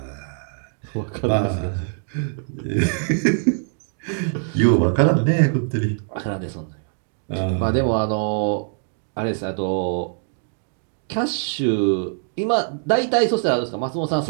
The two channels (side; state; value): left; silent; digital silence